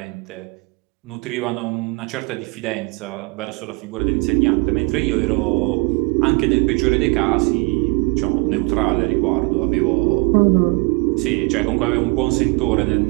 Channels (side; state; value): left; quieter; 29.2 dB